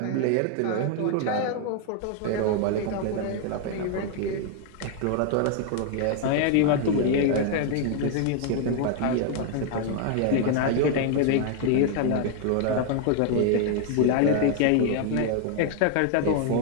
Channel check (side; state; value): both; different; correlation 0.00